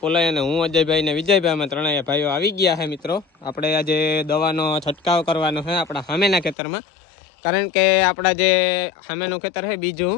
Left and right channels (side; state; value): right; drops out; at 6.6 s